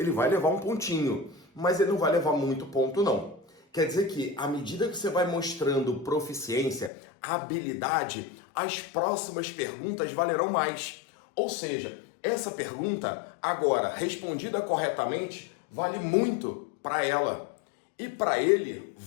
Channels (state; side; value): drops out; right; at 6.9 s